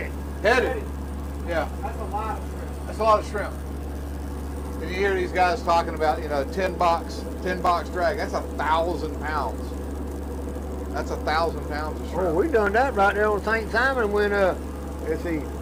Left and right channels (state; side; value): identical; both; correlation 1.00